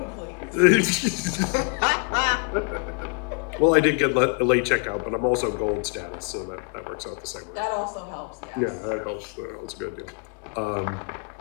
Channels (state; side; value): quieter; right; 37.4 dB